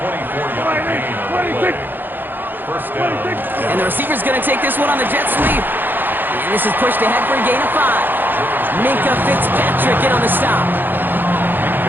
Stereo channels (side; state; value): left; late; 0.092 ms